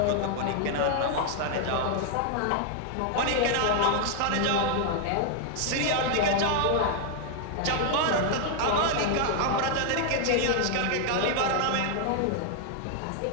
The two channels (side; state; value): both; different; correlation 0.00